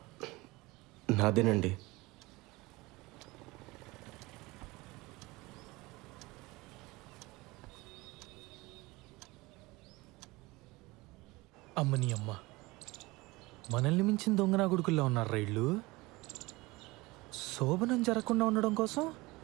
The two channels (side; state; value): left; quieter; 22.0 dB